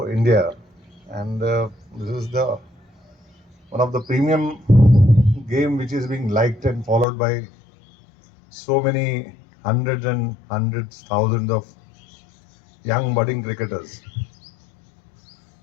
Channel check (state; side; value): drops out; right; at 7.1 s